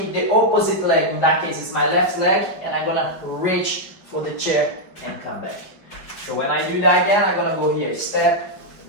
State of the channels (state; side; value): late; right; 5.3 ms